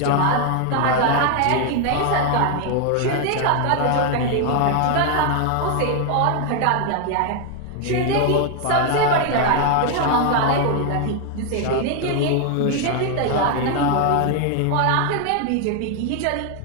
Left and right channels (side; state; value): both; different; correlation 0.00